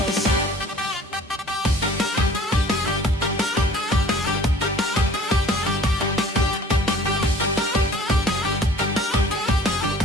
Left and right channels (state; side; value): normal; both; correlation 0.50